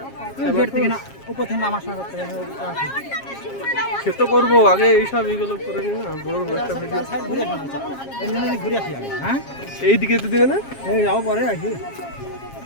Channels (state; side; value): late; right; 7.4 ms